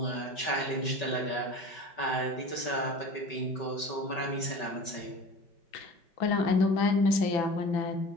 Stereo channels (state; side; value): late; right; 5.2 ms